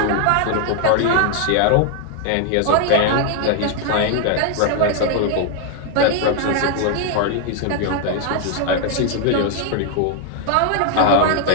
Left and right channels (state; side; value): different; both; correlation 0.00